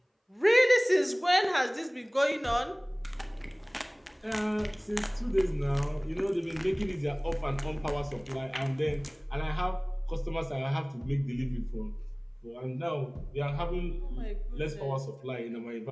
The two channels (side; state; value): both; identical; correlation 1.00